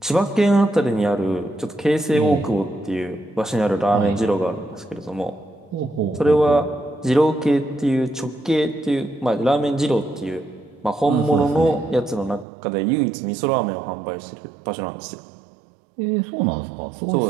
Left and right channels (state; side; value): drops out; left; at 12.5 s